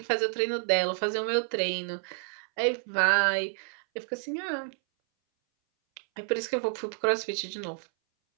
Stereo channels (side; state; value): left; silent; 58 dB below the other